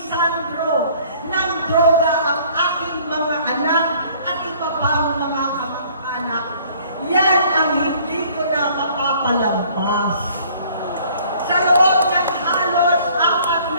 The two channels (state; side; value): inverted; both; correlation -0.56